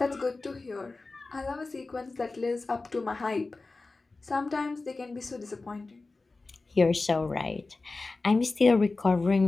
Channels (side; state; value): right; quieter; 3.6 dB